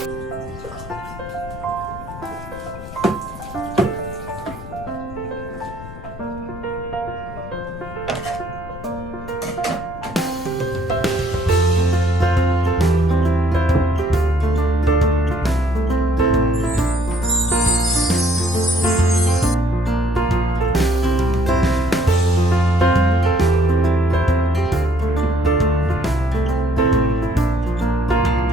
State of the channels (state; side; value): noise; left; rumble, 14 dB below the sound